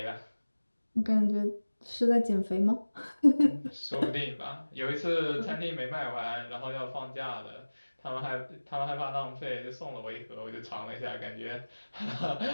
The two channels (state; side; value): inverted; both; correlation -1.00